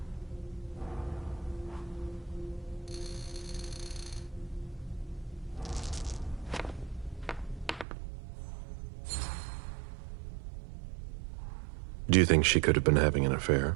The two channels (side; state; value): left; drops out; at 7.9 s